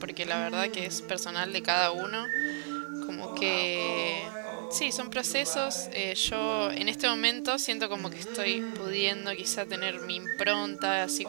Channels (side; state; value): left; silent; digital silence